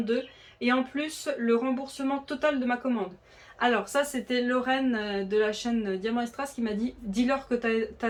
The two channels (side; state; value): both; identical; correlation 1.00